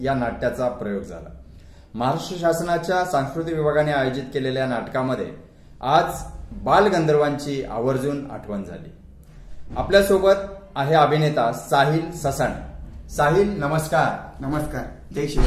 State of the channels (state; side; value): identical; both; correlation 1.00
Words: नाट्याचा प्रयोग झाला। महाराष्ट्र शासनाच्या सांस्कृतिक विभागाने आयोजित केलेल्या नाटकामध्ये आज बालगंधर्वांची आवर्जून आठवण झाली। आपल्यासोबत आहे अभिनेता साहिल ससाणे। साहिल, नमस्कार। नमस्कार, जय